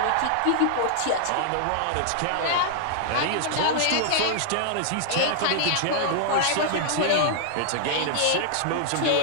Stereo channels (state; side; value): different; both; correlation -0.01